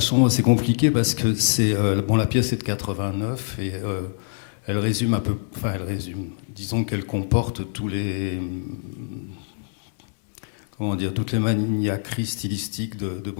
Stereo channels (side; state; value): right; silent; digital silence